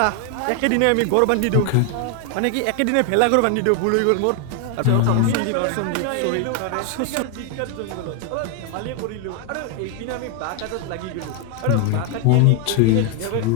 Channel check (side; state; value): both; different; correlation 0.00